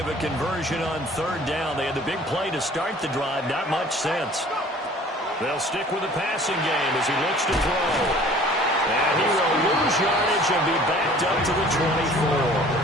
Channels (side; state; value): both; normal; correlation 0.50